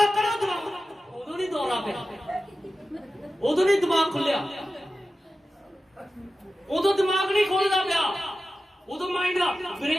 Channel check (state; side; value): normal; both; correlation 0.93